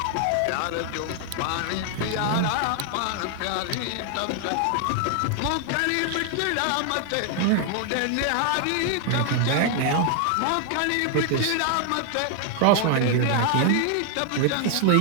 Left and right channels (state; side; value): different; both; correlation 0.00